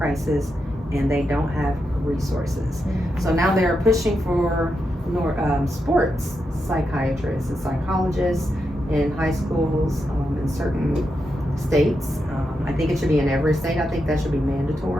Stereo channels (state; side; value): normal; both; correlation 0.85